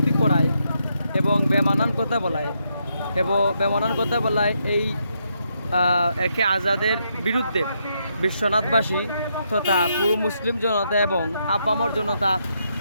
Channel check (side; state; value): both; inverted; correlation -0.79